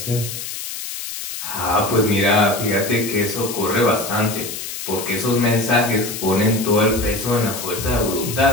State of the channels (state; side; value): noise; left; hiss, 7 dB below the sound